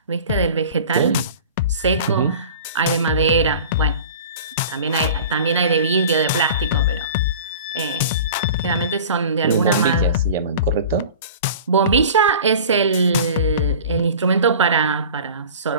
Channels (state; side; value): inverted; both; correlation -0.40